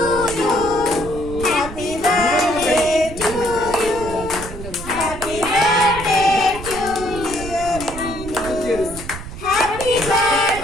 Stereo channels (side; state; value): right; noise; rumble, 11 dB below the sound